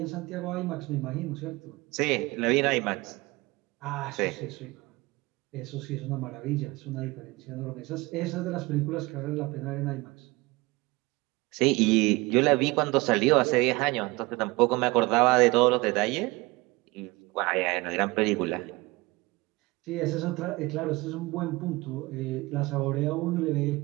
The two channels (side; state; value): left; quieter; 22.6 dB